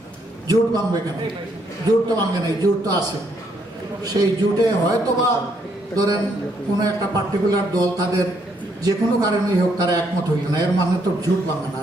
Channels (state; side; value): normal; both; correlation 0.72